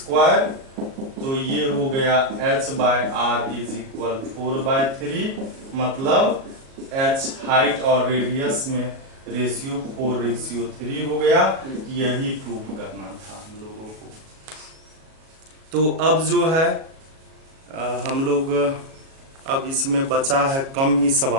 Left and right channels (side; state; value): left; late; 37 ms